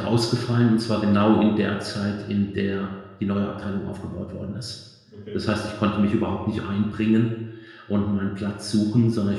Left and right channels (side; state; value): both; identical; correlation 1.00